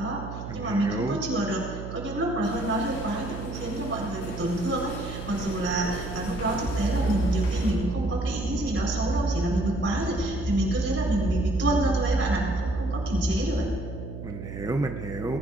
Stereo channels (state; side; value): noise; right; hum, 8 dB below the sound